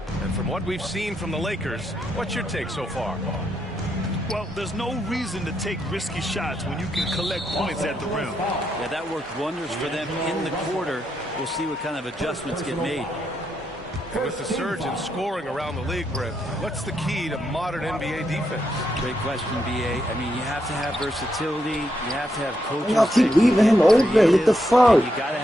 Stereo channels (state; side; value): normal; both; correlation 0.80